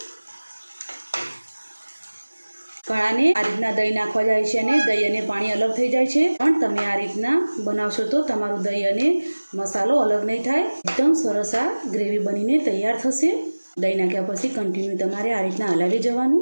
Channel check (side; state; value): both; inverted; correlation -1.00